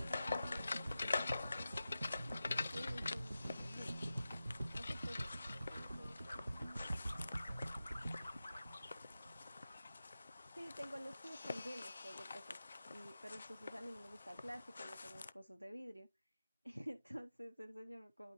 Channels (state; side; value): inverted; both; correlation -0.93